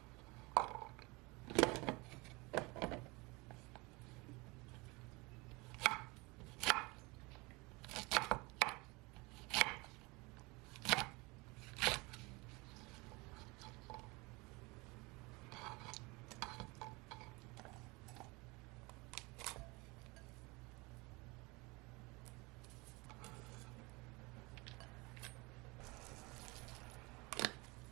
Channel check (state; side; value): quieter; left; 25.5 dB